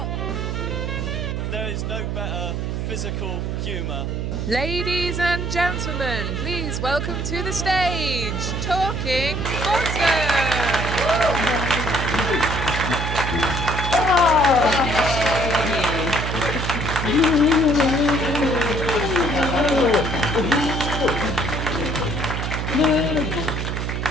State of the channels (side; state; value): right; noise; hum, 2 dB below the sound